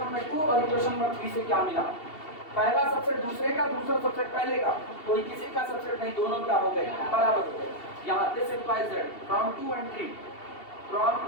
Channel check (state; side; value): late; right; 2.7 ms